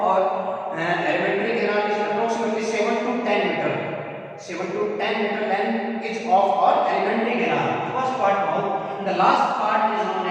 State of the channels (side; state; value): both; identical; correlation 1.00